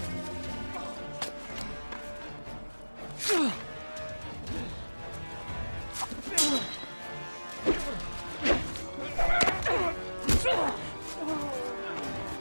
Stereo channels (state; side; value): inverted; both; correlation -1.00